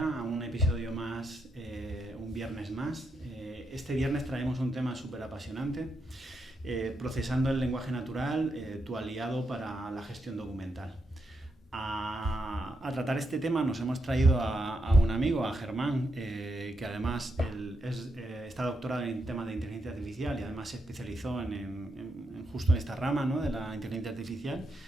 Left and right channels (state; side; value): normal; both; correlation 0.82